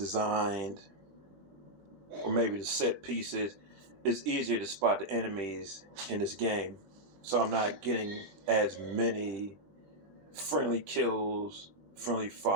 or maybe the set pieces, it's easier to spot the enemies in this game. So I'm not getting as many friendly kills, friendly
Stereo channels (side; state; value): left; late; 20 ms